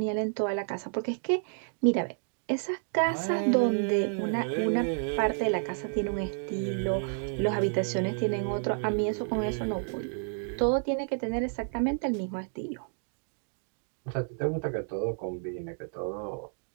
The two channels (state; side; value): silent; left; digital silence